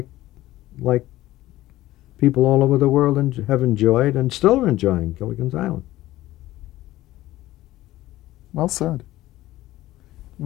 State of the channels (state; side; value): quieter; right; 16.0 dB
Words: people all over the world have enjoyed and still are enjoying Gilligan's Island. Well said. You